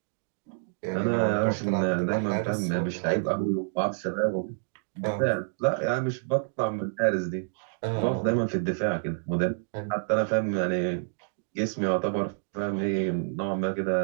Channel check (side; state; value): left; silent; 59 dB below the other